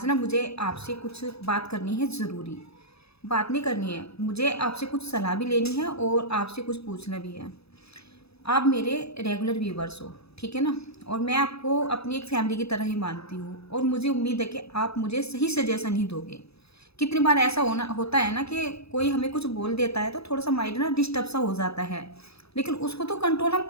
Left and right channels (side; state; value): right; late; 0.78 ms